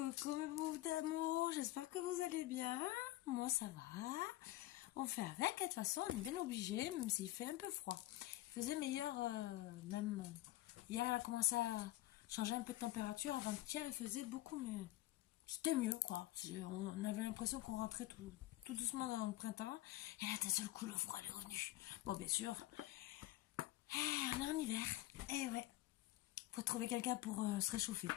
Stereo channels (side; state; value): right; quieter; 16.5 dB